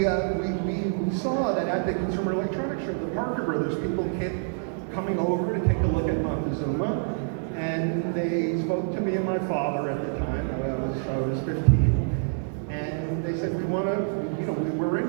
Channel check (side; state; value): left; silent; digital silence